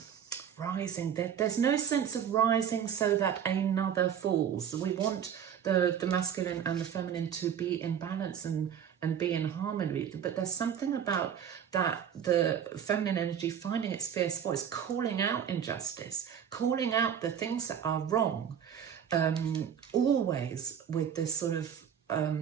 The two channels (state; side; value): quieter; left; 8.5 dB